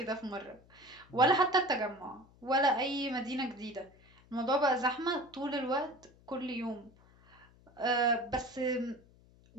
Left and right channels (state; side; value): noise; left; hum, 27 dB below the sound